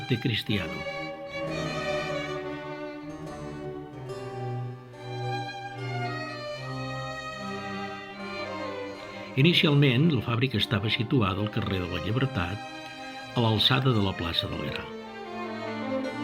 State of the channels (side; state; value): both; identical; correlation 1.00